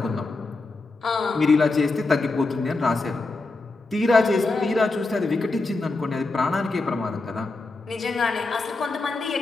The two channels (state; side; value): quieter; right; 3.4 dB